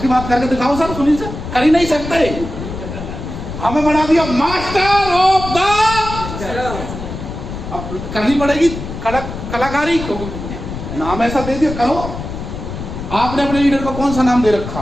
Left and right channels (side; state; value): left; noise; rumble, 8 dB below the sound